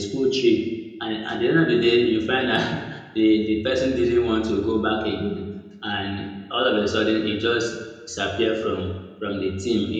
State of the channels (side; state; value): both; identical; correlation 1.00